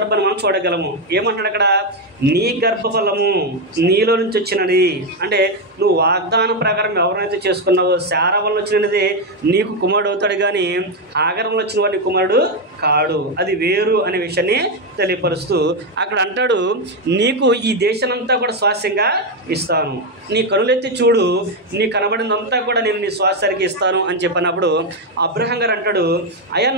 మనం చూడగలము. ఏమంటాడు అక్కడ? నీ గర్భఫలము నీలో నుంచి వచ్చినది. అంటే నువ్వు వాగ్దానం ప్రకారం ఎవరైతే చేసుకున్నావో శారా వల్ల వచ్చినది నీకు కుమారుడు అవుతాడు, కానీ హాగర్ వల్ల వచ్చిన వాడి కుమారుడు కాడు, అది వేరు అనే విషయాన్ని తెలియపరుస్తూ అక్కడ అంటాడు, నీకు ఈ దేశానంతా కూడా స్వాస్యంగా ఇస్తాను, నీ కనులెత్తి చూడు, నీ కనబడినంతా కూడా నేను నీ స్వాస్థ్యానికి ఇస్తాను అని చెప్పినప్పుడు అబ్రహాం గారు అంటాడు, అయ్యా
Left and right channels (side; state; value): both; normal; correlation 0.06